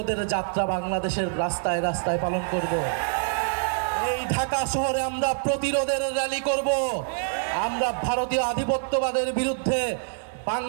যাত্রা বাংলাদেশের রাস্তায় রাস্তায় পালন করব। এই ঢাকা শহরে আমরা প্রতিরোধের র্যালি করব। আমরা ভারতীয় আধিপত্যবাদের বিরুদ্ধে,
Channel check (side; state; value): left; silent; digital silence